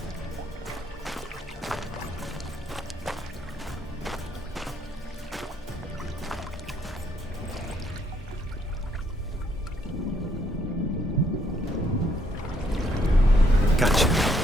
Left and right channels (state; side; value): normal; both; correlation 0.71